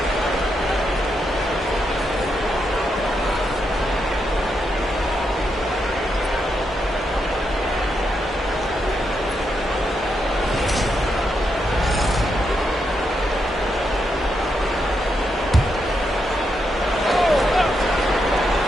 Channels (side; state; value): both; normal; correlation 0.82